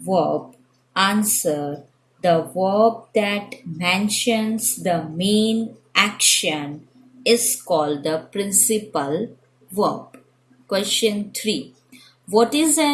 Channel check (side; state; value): both; identical; correlation 1.00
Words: verb? Answer. The verb that mentions the main action is called the principal verb. Question 3. What is